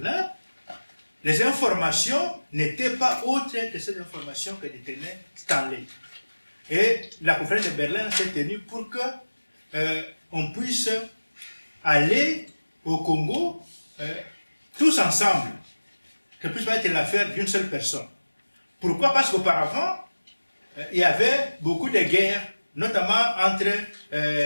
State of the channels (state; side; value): inverted; both; correlation -1.00